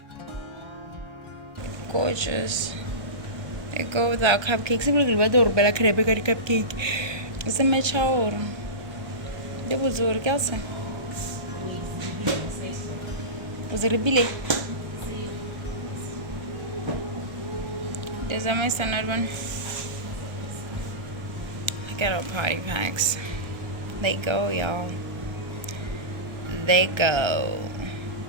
Gorgeous. They go with our cupcakes. I'm looking at the cupcake. It's a match hour. They was over Kelsa. Was it a billet? There's a my standard one. Look at our party packs. They go, y'all. They go.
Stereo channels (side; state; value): left; late; 1.3 ms